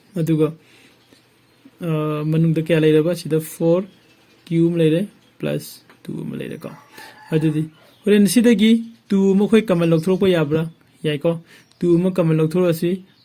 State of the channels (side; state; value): both; identical; correlation 1.00